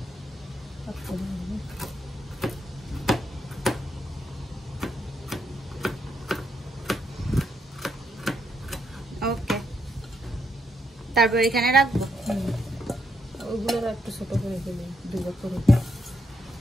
ওকে, তারপর এখানে রাখবো। ওইগুলো একটু ছোট করে ফেলি, 2 ভাগ করে।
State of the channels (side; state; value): both; normal; correlation 0.78